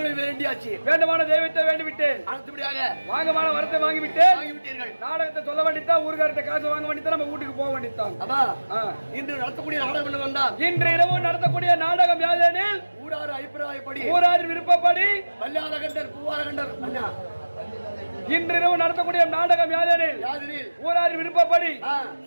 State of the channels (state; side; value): inverted; both; correlation -1.00